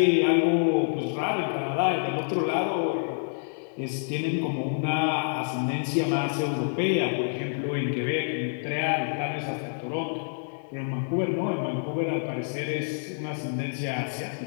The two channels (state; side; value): silent; right; digital silence